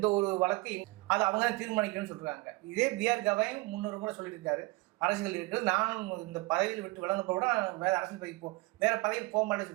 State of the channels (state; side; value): quieter; left; 23.5 dB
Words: ஒரு வழக்கு அது அவங்க தான் தீர்மானிக்கணும்னு சொல்கிறாங்க. இதே பிஆர் கவாயும் 300 முறை சொல்லியிருக்காரு அரசியல் இருக்கிறது. நானும் இந்த பதவியில் விட்டு விளங்க கூட வேற அரசியல் பதவி வேற பதவியில் போக மாட்டேன்னு